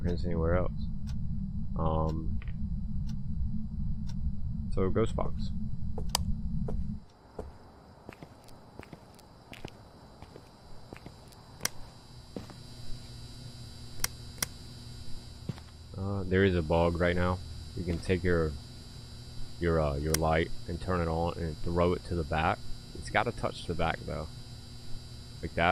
anywhere else. So ghost box. There is a bug right now. You can take your light and turn it on and throw it to the back. It's got to touch the back though, like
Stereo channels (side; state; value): both; identical; correlation 1.00